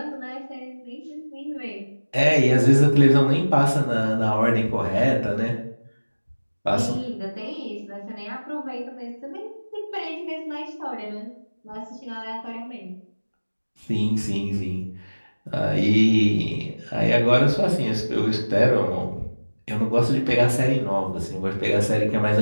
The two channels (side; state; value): both; inverted; correlation -1.00